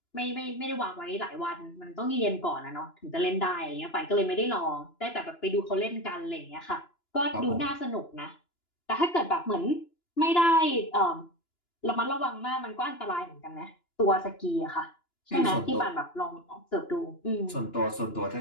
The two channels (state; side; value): late; right; 2.9 ms